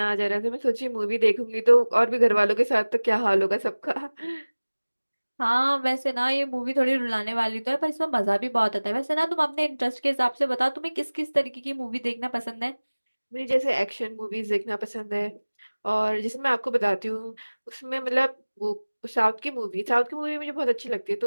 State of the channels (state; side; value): inverted; both; correlation -1.00